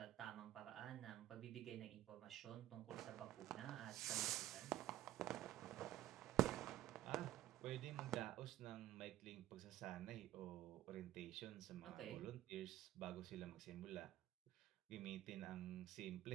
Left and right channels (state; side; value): quieter; left; 13.7 dB